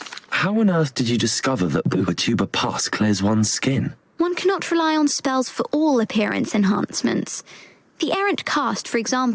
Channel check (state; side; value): identical; both; correlation 1.00